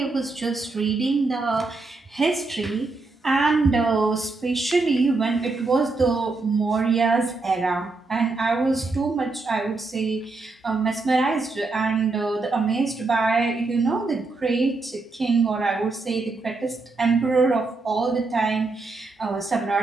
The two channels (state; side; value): quieter; left; 3.6 dB